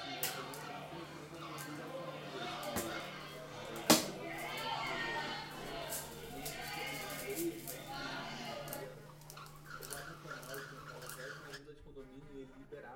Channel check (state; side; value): identical; both; correlation 1.00